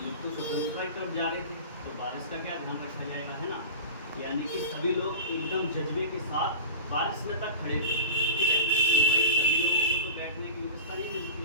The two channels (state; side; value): inverted; both; correlation -0.33